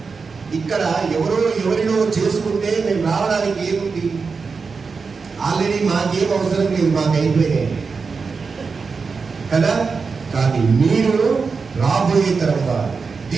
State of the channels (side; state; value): left; quieter; 4.9 dB